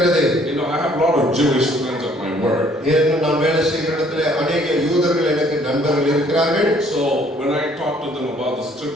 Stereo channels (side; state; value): both; normal; correlation 0.61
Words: I have a lot of Jewish friends at my work. நான் வேலை செய்கிற இடத்துல अनेक யூதர்கள் எனக்கு நண்பர்கள் இருக்கிறார்கள். So when I talk to them about the